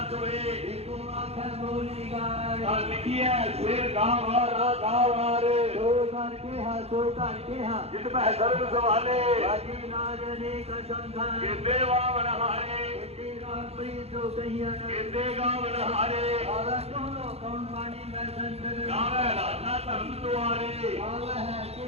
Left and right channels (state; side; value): late; left; 0.30 ms